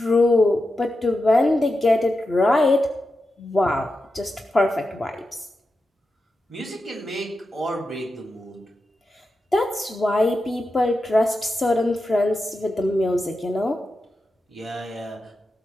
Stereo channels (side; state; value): both; normal; correlation 0.90